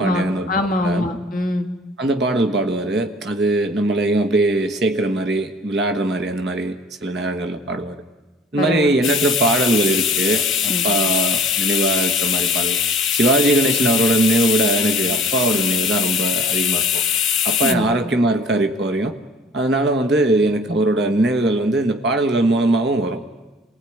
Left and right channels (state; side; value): normal; both; correlation 0.50